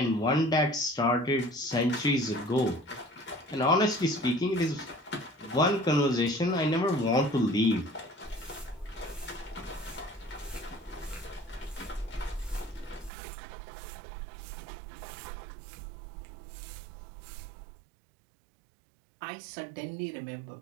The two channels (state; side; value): drops out; left; at 13.1 s